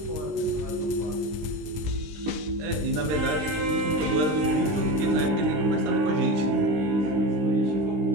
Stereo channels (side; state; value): left; late; 19 ms